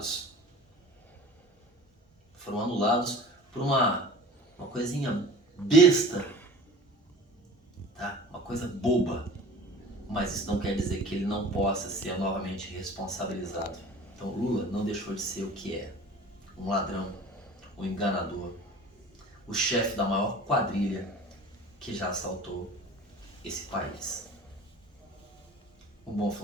Foram anulados por uma coisinha besta, tá? Uma coisa boba. Mas isso não quer dizer que ele não possa ser novamente responsabilizado. Então Lula não deixou de ser o que é. Um ladrão, um enganador, o chefe da maior quadrilha que já assaltou esse país. Um bom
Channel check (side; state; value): both; normal; correlation 0.41